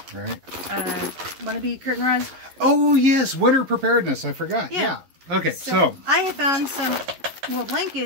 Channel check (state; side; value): late; left; 11 ms